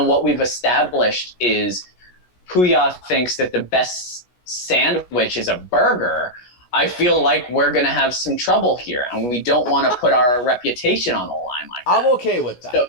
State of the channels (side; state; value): right; late; 16 ms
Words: what we've established is Puya thinks that the best sandwich is a burger, I feel like we're going to have some trouble here, and we don't want to put our reputation on the line like that. I'm okay with that. So,